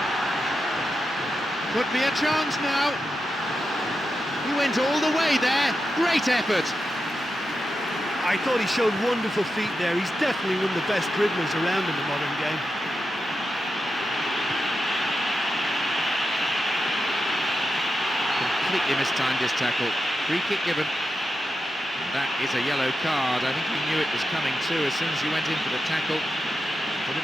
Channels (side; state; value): both; normal; correlation 0.88